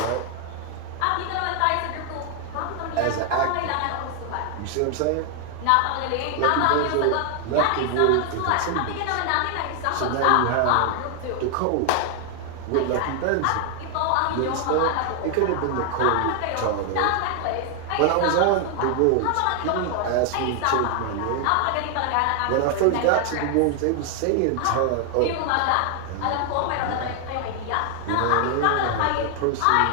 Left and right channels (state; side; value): different; both; correlation 0.00